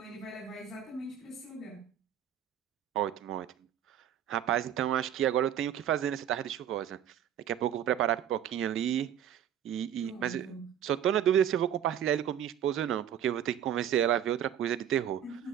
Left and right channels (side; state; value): left; quieter; 9.9 dB